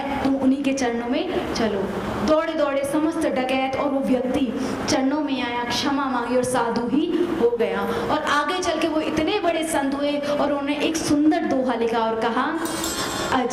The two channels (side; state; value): left; noise; hum, 26 dB below the sound